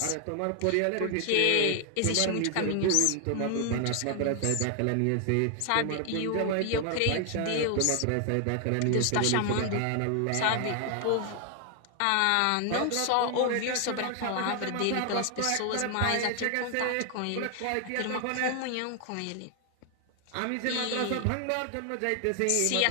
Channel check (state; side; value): different; both; correlation 0.00